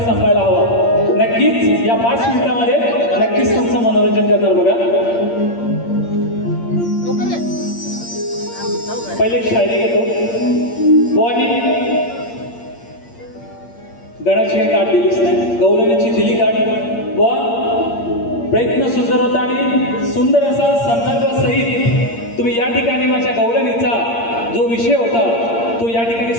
हवा। नक्कीच या 5 मिनिटांमध्ये नक्कीच तुमचं मनोरंजन करणार बघा। पहिले शायरी घेतो। बुवांनी गणाची गाठ दिलीच नाही, गवळणीची दिली गाठ। बुवा प्रयत्न सुंदर होता आणि सुंदर असा संदर्भ सहित तुम्ही या ठिकाणी माझ्या गवळणीचा जो विषय होता तो या ठिकाणी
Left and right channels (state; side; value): late; right; 8.7 ms